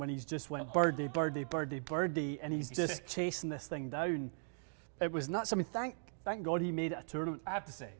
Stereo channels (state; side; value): silent; left; digital silence